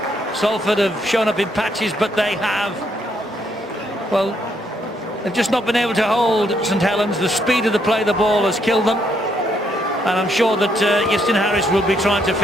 Salford have shown up in patches, but they have, well, they've just not been able to hold St Helens. The speed of the play, the ball has killed them. And I'm sure that Justin Harris will be trying to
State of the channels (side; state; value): both; normal; correlation 0.73